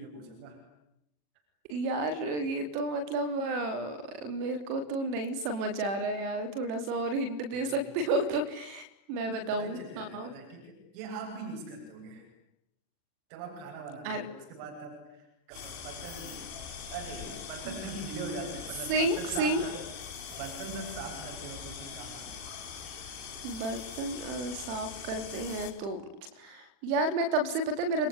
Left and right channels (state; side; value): late; left; 40 ms